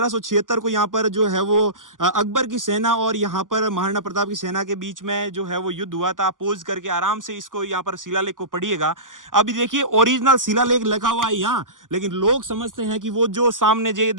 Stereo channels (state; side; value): late; left; 0.88 ms